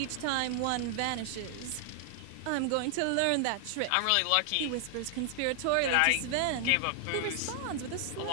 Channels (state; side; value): different; both; correlation 0.00